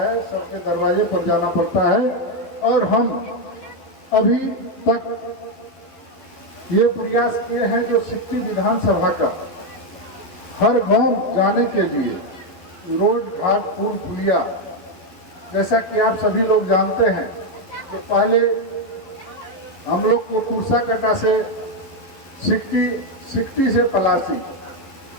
सबके दरवाजे पर जाना पड़ता है। और हम अभी तक ये प्रयास किए हैं जो सिकटी विधानसभा का हर गांव जाने के लिए, रोड घाट पुल पुलिया, जैसा कि आप सभी लोग जानते हैं, तो पहले हम लोग को कुर्साकटा से सिकटी से पलासी,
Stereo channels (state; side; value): late; right; 12 ms